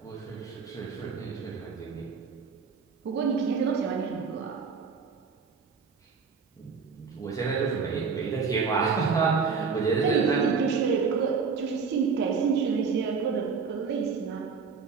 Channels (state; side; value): quieter; left; 5.4 dB